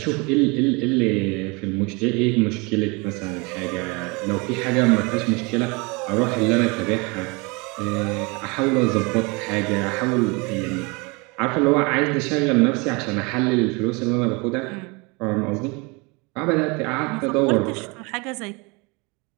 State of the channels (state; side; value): quieter; left; 28.2 dB